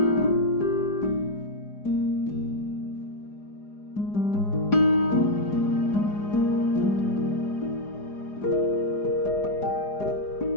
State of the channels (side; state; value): right; late; 4.9 ms